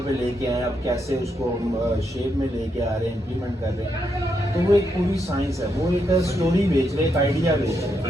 पे लेके आए, अब कैसे उसको हम शेप में लेके आ रहे हैं, इम्प्लीमेंट कर रहे हैं। तो वो एक पूरी साइंस है, वो एक स्टोरी बेच रहे, एक आइडिया बेच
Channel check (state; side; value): normal; both; correlation 0.80